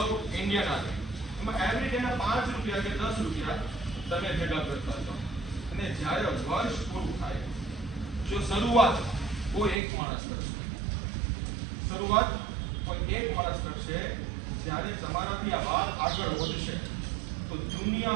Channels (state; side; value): drops out; left; at 9.8 s